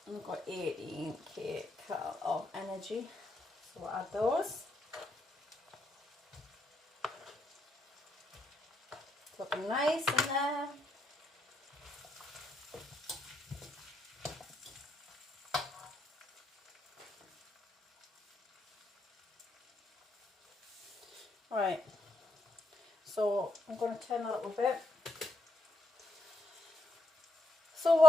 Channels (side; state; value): both; normal; correlation 0.77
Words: And we've got 18 kcal of energy. So we'll add those. It's looking nice in there. Right, so I'm going to turn a little bit. So